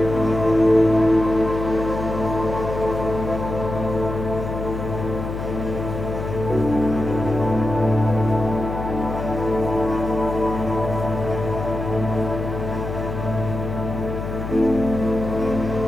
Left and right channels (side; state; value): left; noise; hum, 6 dB below the sound